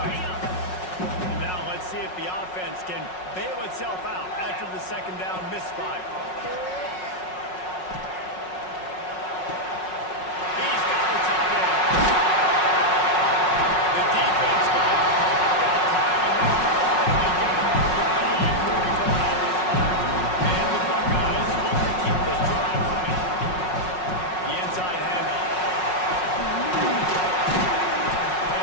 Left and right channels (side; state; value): right; late; 5.5 ms